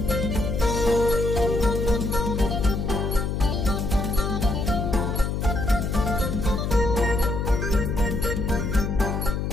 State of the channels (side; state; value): left; noise; hum, 1 dB below the sound